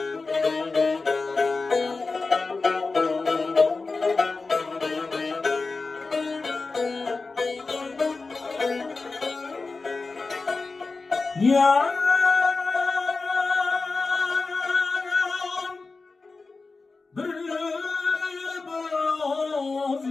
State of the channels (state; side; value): quieter; right; 3.9 dB